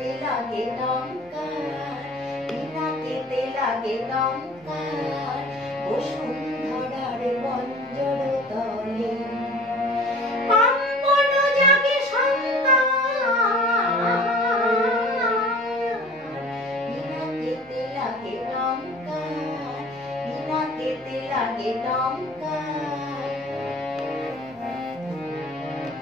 লাগে টঙ্কার, বিনা কেতে লাগে টঙ্কার, বসুন্ধরার পঞ্জর তলে কম্পন জাগে সংগার, বিনা কেতে লাগে টঙ্কার, বিনা কেতে লাগে টঙ্কার।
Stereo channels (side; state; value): both; normal; correlation 0.45